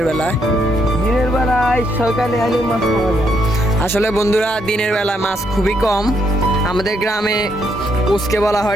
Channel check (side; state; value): both; normal; correlation 0.75